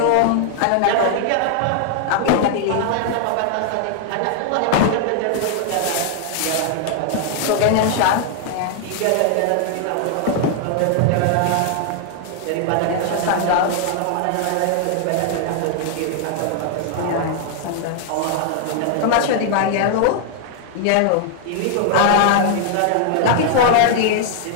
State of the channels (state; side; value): different; both; correlation 0.00